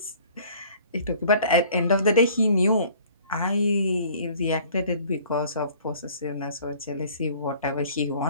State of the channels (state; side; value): inverted; both; correlation -0.53